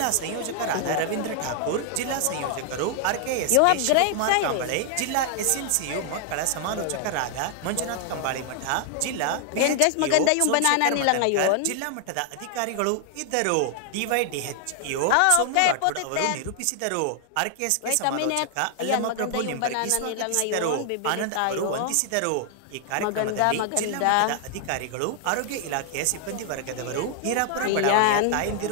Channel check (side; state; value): both; different; correlation 0.00